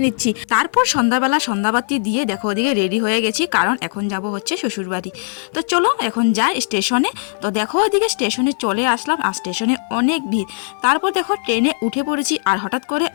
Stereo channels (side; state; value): right; silent; 67 dB below the other